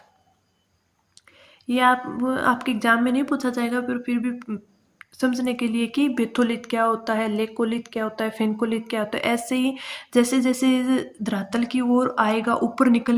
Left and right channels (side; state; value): both; identical; correlation 1.00